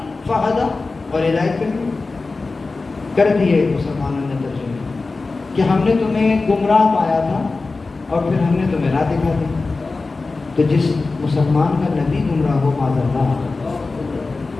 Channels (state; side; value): quieter; right; 3.7 dB